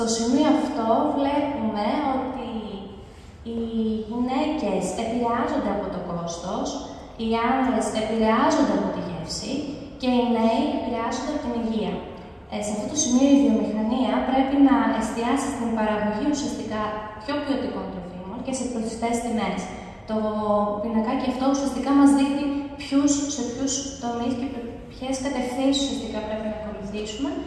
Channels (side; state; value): both; identical; correlation 1.00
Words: σημείο αυτό βλέπουμε ότι οι γυναίκες επηρεάζονται από το κόστος, οι άνδρες επηρεάζονται από τη γεύση και οι νέοι επηρεάζονται από την υγεία. Σε αυτό το σημείο η βιομηχανία πρέπει να εστιάσει στην παραγωγή ουσιαστικά πιο ποιοτικών τροφίμων και σε προσιτές τιμές. Το πινακάκι αυτό ουσιαστικά μας δείχνει σε ποιους τομείς και ποιες κατευθύνσεις ουσιαστικά πρέπει να ακολουθήσουμε